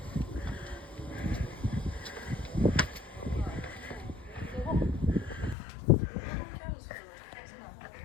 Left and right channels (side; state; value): right; drops out; at 5.6 s